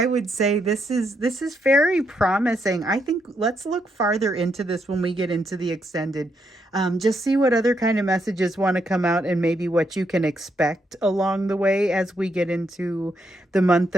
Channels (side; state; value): both; normal; correlation 0.78